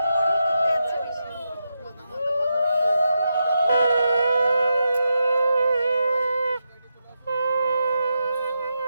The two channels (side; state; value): both; inverted; correlation -0.87